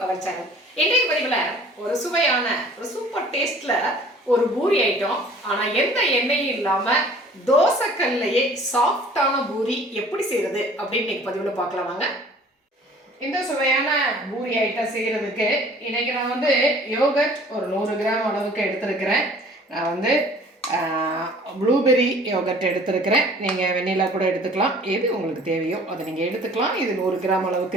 our channel. இன்றைய பதிவில் ஒரு சுவையான ஒரு சூப்பர் டேஸ்ட்ல ஒரு பூரி ஐட்டம். ஆனா எந்த எண்ணெயும் இல்லாம தோசைக்கல்லையே சாஃப்டான பூரி எப்படி செய்யறது அப்படின்னு இன்னைக்கு பதிவில் பார்க்கலாம் வாங்க. இந்த சுவையான பூரி ஐட்டம் செய்யறதுக்கு இன்னைக்கு நான் வந்து யோகர்ட் ஒரு 100 கிராம் அளவுக்கு எடுத்திருக்கிறேன். நான் வந்து ப்ளூபெர்ரி யோகர்ட் எடுத்திருக்கிறேன். நீங்கள் வெண்ணிலா கூட எடுத்துக்கலாம், எது உங்களுக்கு தேவையோ அதை நீங்கள் எடுத்துக்கலாம். இது 100 கிராம்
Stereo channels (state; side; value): normal; both; correlation 0.50